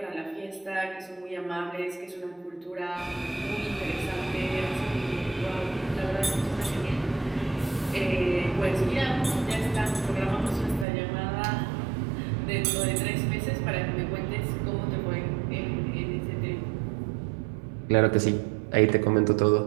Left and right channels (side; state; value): left; drops out; at 10.9 s